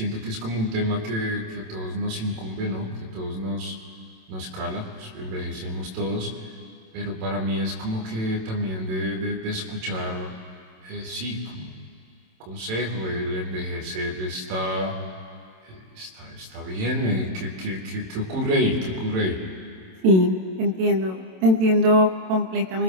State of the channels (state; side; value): late; left; 27 ms